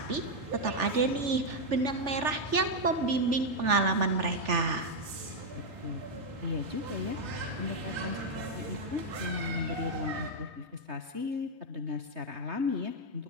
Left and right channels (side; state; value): left; late; 3.4 ms